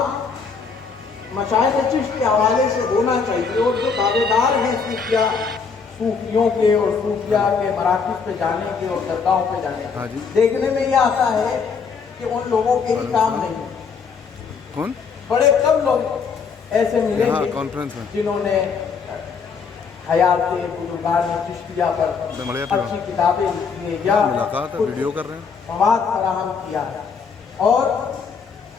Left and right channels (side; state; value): right; quieter; 5.6 dB